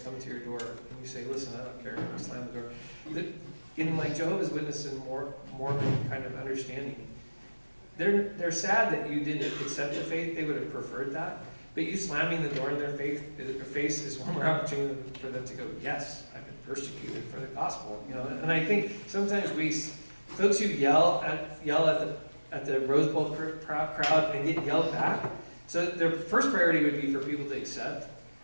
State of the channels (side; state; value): both; inverted; correlation -1.00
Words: to your door and you say, listen, I don't care, and you slam the door, in like Jehovah's Witness and Mormon kind of understanding, they're sad that you didn't accept the faith. They would have preferred that. But you slamming the door in their face is one more opportunity for them to go, yes, I've been persecuted for the gospel. And I think sometimes folks who yell at the Rose Bowl crowd and get yelled back. So their first priority would be for people to accept.